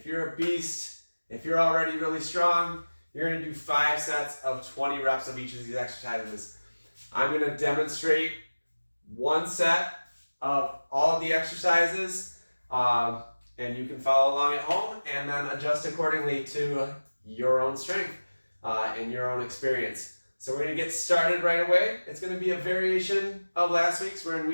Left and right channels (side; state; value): both; inverted; correlation -1.00